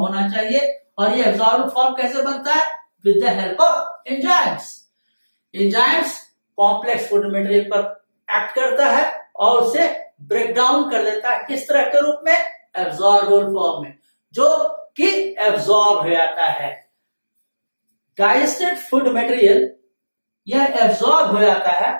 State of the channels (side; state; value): both; inverted; correlation -1.00